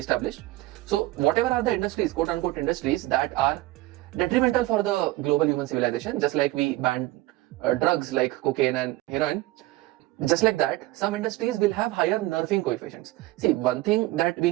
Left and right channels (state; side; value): quieter; left; 18.2 dB